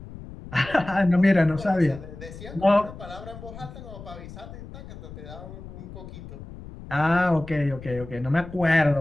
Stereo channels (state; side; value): noise; left; rumble, 14 dB below the sound